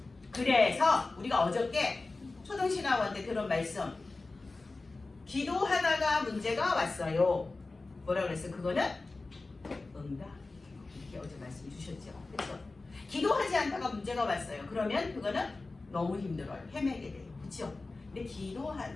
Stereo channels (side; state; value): right; quieter; 3.4 dB